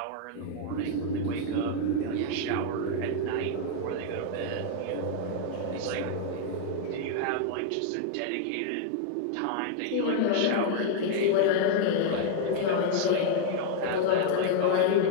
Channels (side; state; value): both; different; correlation 0.00